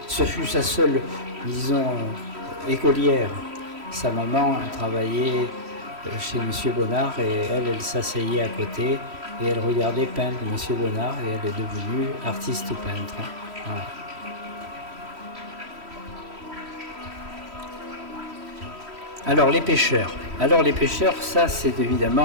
seule, disons, écolière. Sa maman travaillait chez Monsieur Bonnard et elle s'asseyait à côté et elle regardait peindre Monsieur Bonnard et elle est devenue artiste peintre. Voilà. Alors les pêcheurs, ça c'est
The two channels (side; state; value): left; late; 3.1 ms